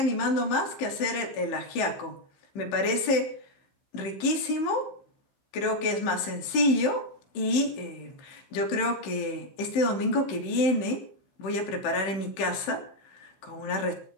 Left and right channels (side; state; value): right; late; 15 ms